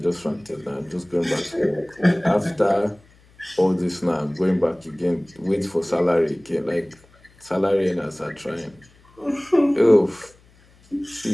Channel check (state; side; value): noise; left; hum, 29 dB below the sound